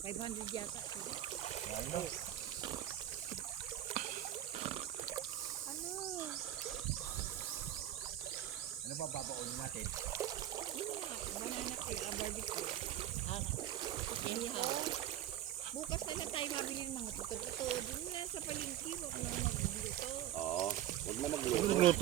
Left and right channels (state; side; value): quieter; left; 12.2 dB